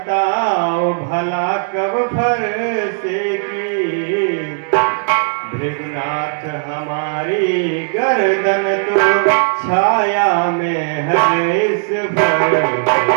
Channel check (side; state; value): left; silent; digital silence